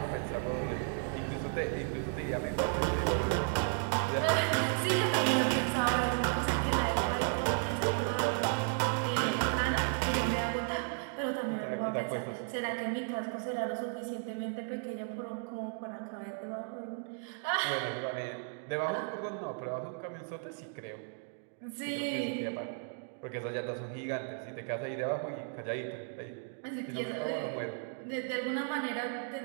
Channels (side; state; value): left; silent; 55 dB below the other